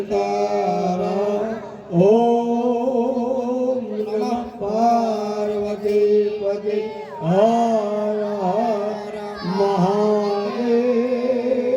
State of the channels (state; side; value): identical; both; correlation 1.00